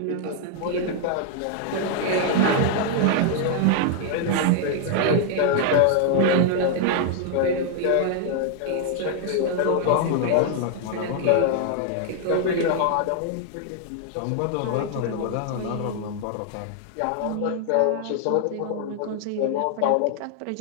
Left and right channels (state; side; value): different; both; correlation 0.00